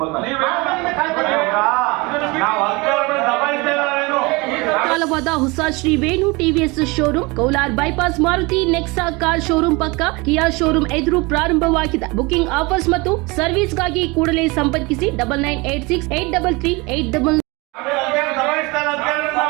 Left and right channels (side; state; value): left; quieter; 25.5 dB